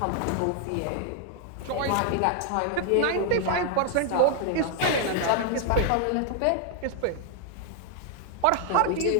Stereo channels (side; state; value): both; different; correlation 0.00